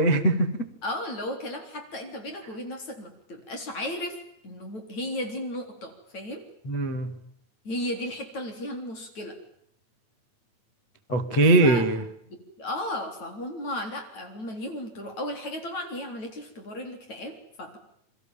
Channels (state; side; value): late; right; 9.1 ms